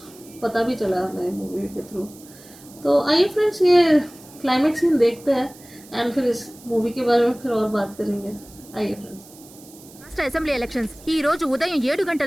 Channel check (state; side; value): noise; right; hiss, 22 dB below the sound